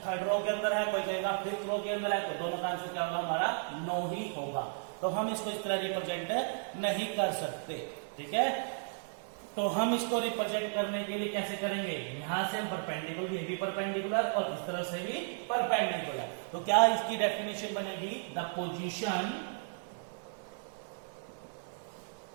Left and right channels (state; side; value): silent; left; digital silence